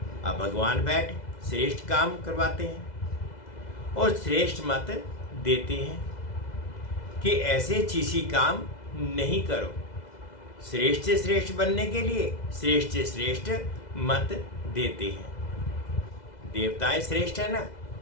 अब भगवान बैठ श्रेष्ठ काम करवाते हैं और श्रेष्ठ मत देते हैं कि ऐसे छी छी काम नहीं करो। श्रेष्ठ से श्रेष्ठ बनने के लिए श्रेष्ठ से श्रेष्ठ मत देते हैं। देवताएं श्रेष्ठ है ना,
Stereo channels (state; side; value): late; right; 2.0 ms